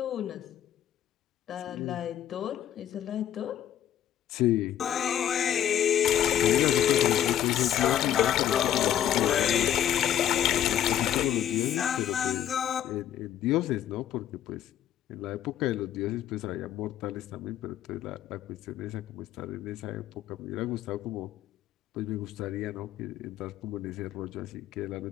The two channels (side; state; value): right; quieter; 10.9 dB